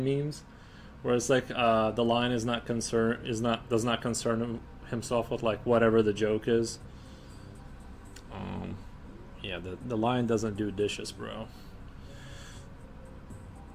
memes where it's like the lion does not concern himself with like whatever the joke is? Yeah, the lion doesn't do dishes, bro.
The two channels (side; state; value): both; identical; correlation 1.00